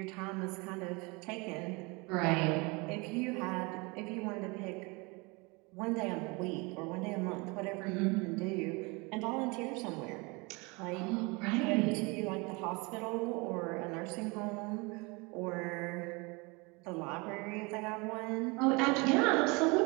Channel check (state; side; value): quieter; left; 27.5 dB